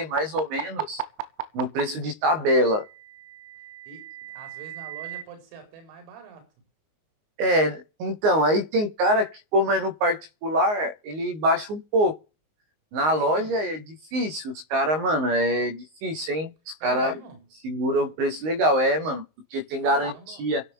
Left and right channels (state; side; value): late; left; 19 ms